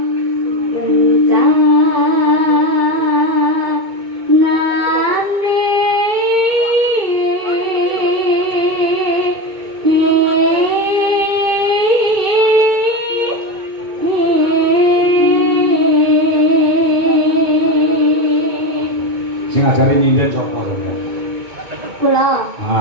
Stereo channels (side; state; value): left; late; 2.2 ms